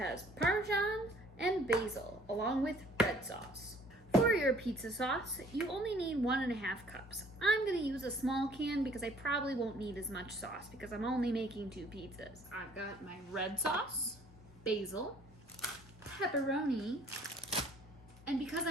Parmesan and basil, along with red sauce. For your pizza sauce, you only need 1.5 cups. I'm gonna use a small can because I probably won't need as much sauce because I'm only making 2 pizzas. I've got my red sauce, basil, pepperoni, and because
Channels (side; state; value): both; normal; correlation 0.57